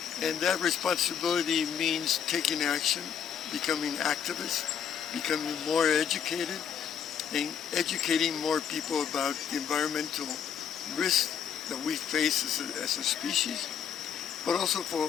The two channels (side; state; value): right; quieter; 8.1 dB